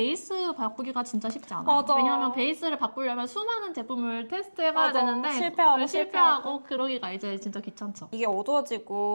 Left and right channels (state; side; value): inverted; both; correlation -1.00